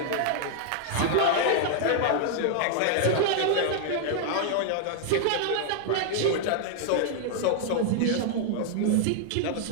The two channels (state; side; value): different; both; correlation 0.00